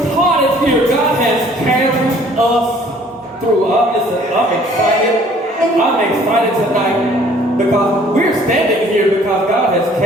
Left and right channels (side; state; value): both; normal; correlation 0.56